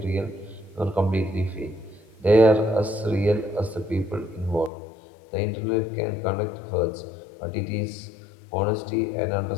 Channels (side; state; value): right; drops out; at 4.7 s